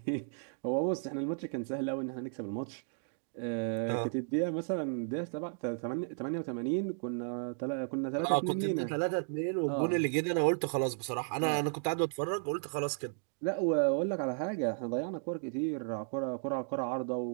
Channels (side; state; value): left; silent; digital silence